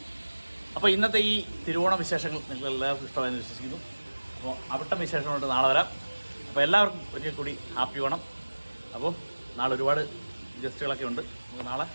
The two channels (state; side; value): inverted; both; correlation -1.00